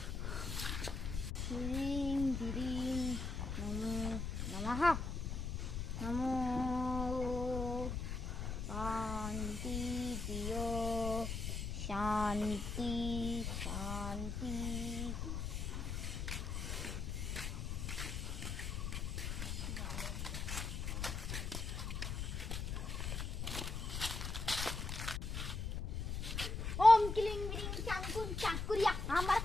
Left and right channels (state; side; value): noise; left; rumble, 3 dB below the sound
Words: হ্রিং হ্রিং নমো নমঃ। নমো শান্তি প্রিয় শান্তি শান্তি। ওম ক্লিং গ্রিং চাকুন চাকুরিয়া আমার